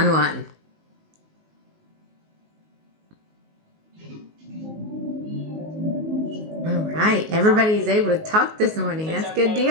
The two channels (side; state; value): left; late; 19 ms